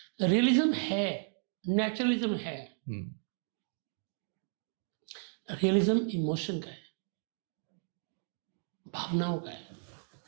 रियलिज्म है, नेचुरलिज्म है। रियलिज्म इमोशन का है, भावनाओं का है।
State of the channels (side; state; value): left; silent; digital silence